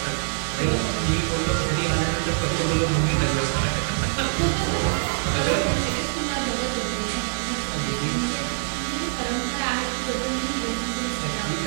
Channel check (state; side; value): silent; left; digital silence